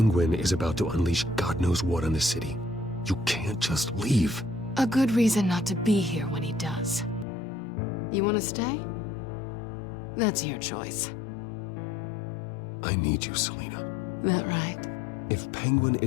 is about to unleash God knows what on the city. You can't just leave. A good reason not to be here when he does. You want to stay? That's your choice. I need you, Selina. That right? If Penguin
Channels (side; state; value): right; drops out; at 7.2 s